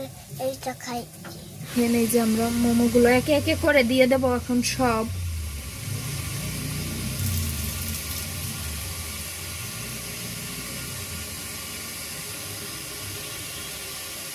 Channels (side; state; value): both; identical; correlation 1.00